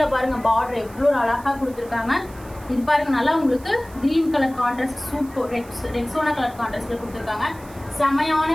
பாருங்க பார்டர் எவ்வளோ அழகாக கொடுத்துருக்காங்க. இது பாருங்க நல்லா உங்களுக்கு green colour contrast, super Rexona colour கான்ட்ராஸ்ட்ல கொடுத்துருக்காங்க. செமையான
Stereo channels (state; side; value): noise; right; hiss, 23 dB below the sound